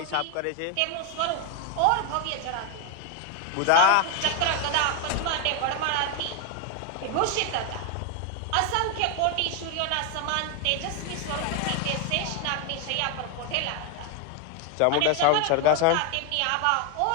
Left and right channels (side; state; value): both; different; correlation 0.01